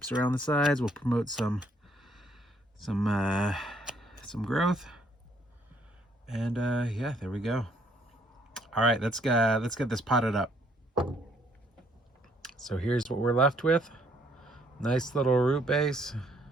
around the sides will promote some growth. And yeah, there we go. All right, let's get this potted up. So here's what we're left with. Nice little root base.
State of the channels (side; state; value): both; normal; correlation 0.67